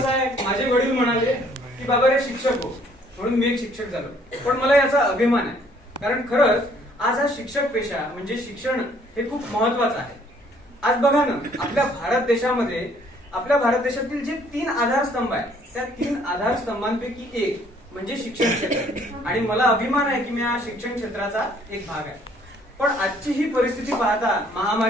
आहे, माझे वडील म्हणाले की बाबा रे शिक्षक हो, म्हणून मी एक शिक्षक झालो. पण मला याचा अभिमान आहे, कारण खरंच आज हा शिक्षक पेशा म्हणजे शिक्षण हे खूप महत्वाचं आहे. आज बघा ना, आपल्या भारत देशातील जे 3 आधारस्तंभ आहेत, त्या 3 आधारस्तंभांपैकी एक म्हणजे शिक्षण क्षेत्र. आणि मला अभिमान आहे की मी या शिक्षण क्षेत्राचा एक भाग आहे. पण आजची ही परिस्थिती पाहता,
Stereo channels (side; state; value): both; normal; correlation 0.62